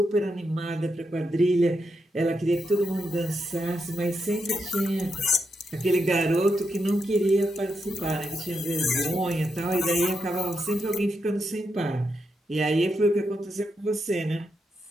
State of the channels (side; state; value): both; normal; correlation 0.83